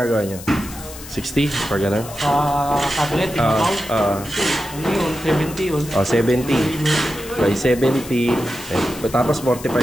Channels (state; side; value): noise; left; hiss, 15 dB below the sound